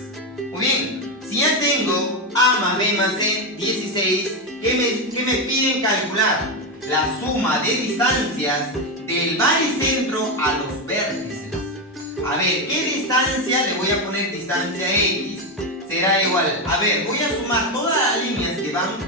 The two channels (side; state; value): both; normal; correlation 0.11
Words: Muy bien, si ya tengo A más B más C, 16, ¿qué me piden calcular? La suma de distancias del baricentro a los vértices. A ver, ¿qué distancia? Le voy a poner distancia X. Será igual, a ver, voy a sumar todas las líneas que